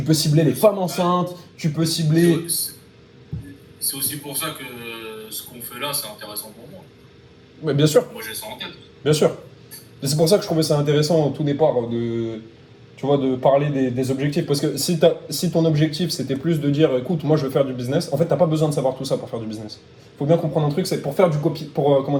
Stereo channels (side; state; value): both; identical; correlation 1.00